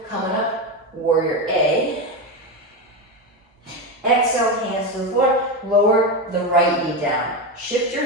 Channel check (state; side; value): normal; both; correlation 0.14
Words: coming up, warrior A. Exhale, hands to the floor, lower the right knee down. Shift your